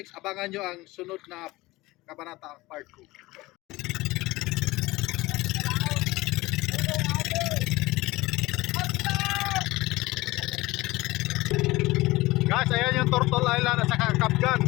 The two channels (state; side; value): quieter; right; 20.1 dB